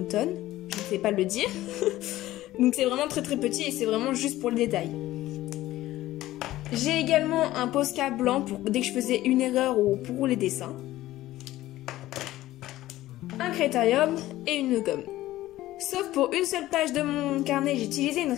je ne sais pas le dire. Donc c'est vraiment très très petit et c'est vraiment juste pour le détail. J'ai également un Posca blanc pour dès que je faisais une erreur ou pour les dessins. Un Crétarium et une gomme. Sauf pour une seule page de mon carnet, j'ai utilisé une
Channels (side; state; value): right; quieter; 15.6 dB